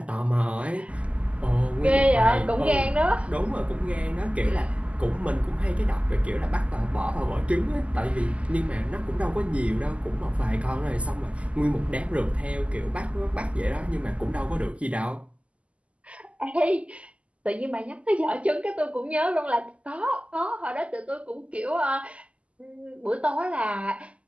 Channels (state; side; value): late; left; 0.061 ms